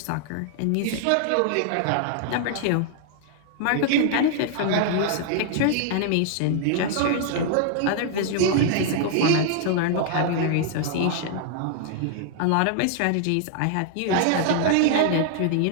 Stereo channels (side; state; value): both; different; correlation 0.00